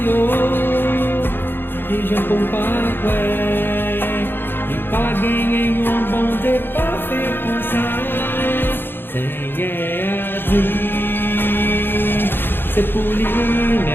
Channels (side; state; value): right; late; 0.10 ms